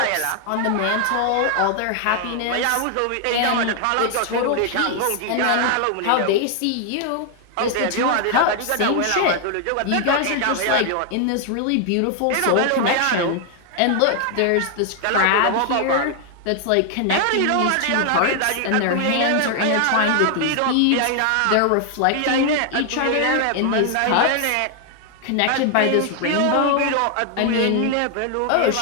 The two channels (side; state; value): both; different; correlation 0.00